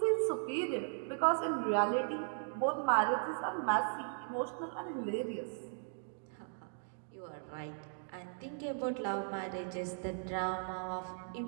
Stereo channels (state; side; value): silent; left; digital silence